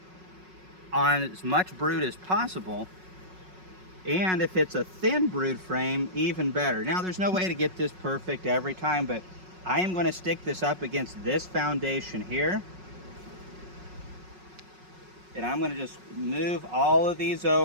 on as much brood as possible, and if it's a thin brood frame, even better. Now there's no way to get this perfect every time, but I am going to stick this up against this foundation here, and I'm going to just move all of these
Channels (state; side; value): late; left; 5.4 ms